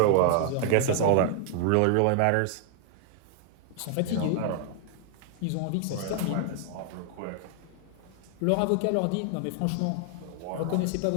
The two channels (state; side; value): different; both; correlation 0.00